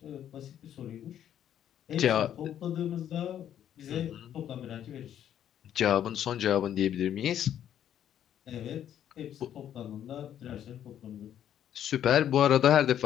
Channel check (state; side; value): quieter; right; 10.3 dB